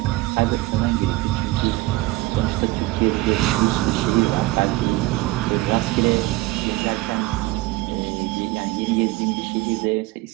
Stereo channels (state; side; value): quieter; left; 19.4 dB